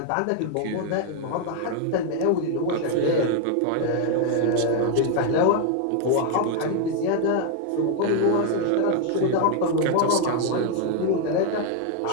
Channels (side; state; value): both; different; correlation 0.00